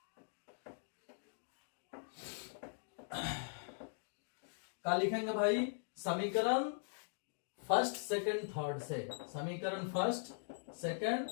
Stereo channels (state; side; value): silent; right; digital silence